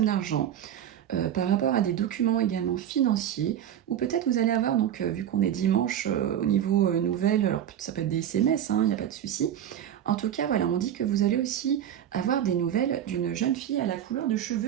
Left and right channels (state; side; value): quieter; left; 10.3 dB